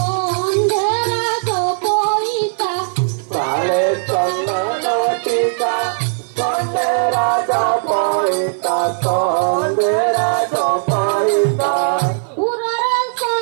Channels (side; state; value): left; silent; 56 dB below the other